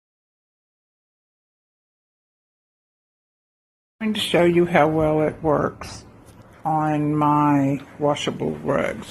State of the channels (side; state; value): both; identical; correlation 1.00